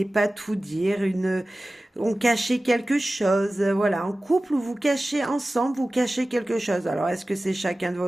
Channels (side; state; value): both; normal; correlation 0.96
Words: pas tout dire, on cachait quelque chose, voilà, en couple vous cachez ensemble, vous cachez quelque chose. Alors est-ce que c'est chacun de